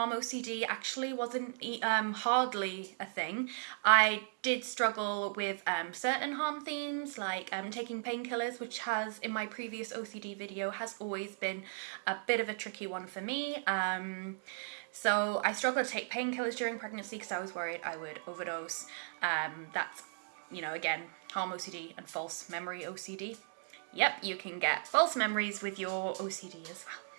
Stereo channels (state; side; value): silent; left; digital silence